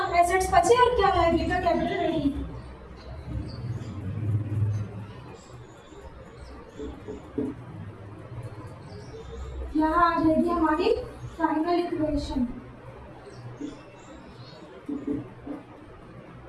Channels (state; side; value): identical; both; correlation 1.00